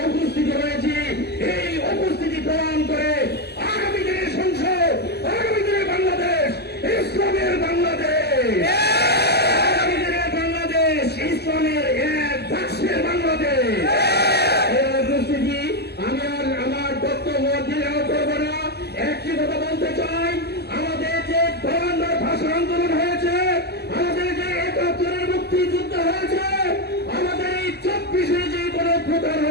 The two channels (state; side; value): late; right; 0.47 ms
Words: উপস্থিত হয়েছি, এই উপস্থিতি প্রমাণ করে আগামী দিনের সংসদ, আগামী দিনের বাংলাদেশ ইসলামের বাংলাদেশ, আগামী দিনের বাংলাদেশ ইসলামের এক বাক্সের বাংলাদেশ। এই উপস্থিতি আমি আর আমার বক্তব্য দীর্ঘ করবো না। একটি কথা বলতে চাই, আমাদের যে গভর্নর ভাষা আন্দোলন হয়েছে, আমাদের যে ৭১-এর মুক্তিযুদ্ধ হয়েছে, আমাদের এই ২৪-এ যে কোনো প্রকার